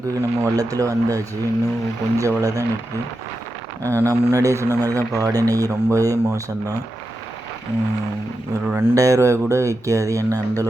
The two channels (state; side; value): normal; both; correlation 0.89